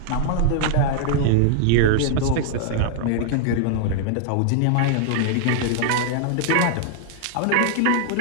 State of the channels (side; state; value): both; different; correlation -0.01